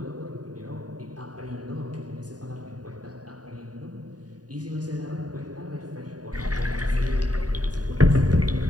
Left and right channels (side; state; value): left; late; 0.68 ms